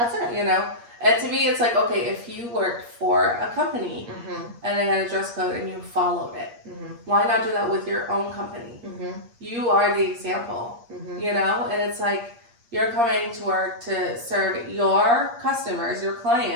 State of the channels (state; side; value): late; left; 8.5 ms